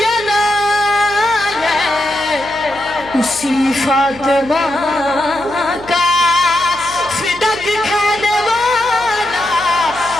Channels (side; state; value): left; noise; hum, 20 dB below the sound